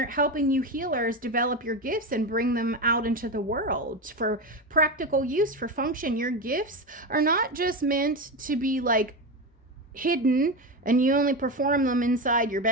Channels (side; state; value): both; normal; correlation 0.17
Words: helping you healers develop your gifts and bring them out into the world for practical use, for function. Your gifts are not just meant to be like hidden and you only perform them inside your